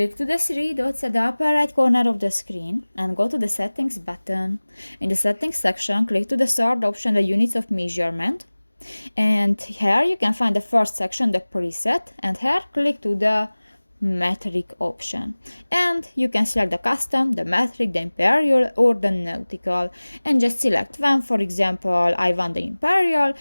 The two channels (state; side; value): inverted; both; correlation -1.00